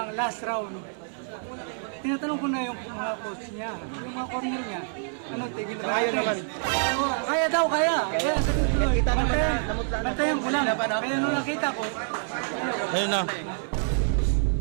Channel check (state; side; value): silent; left; 60 dB below the other